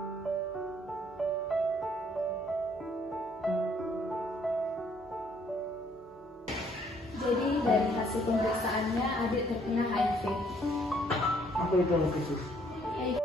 Jadi dari hasil pemeriksaannya adik terkena HIV. Apa itu khusus?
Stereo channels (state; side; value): normal; both; correlation 0.65